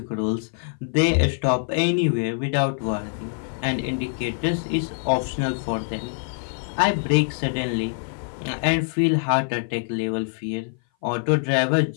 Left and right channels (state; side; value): silent; right; 57 dB below the other